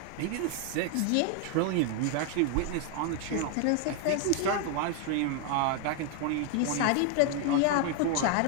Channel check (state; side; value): different; both; correlation 0.00